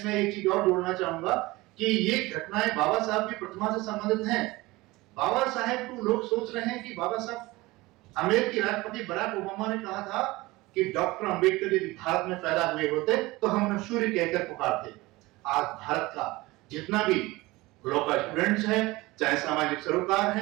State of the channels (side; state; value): left; quieter; 20.8 dB